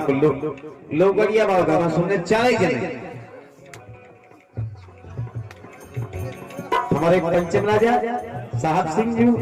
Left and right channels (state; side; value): identical; both; correlation 1.00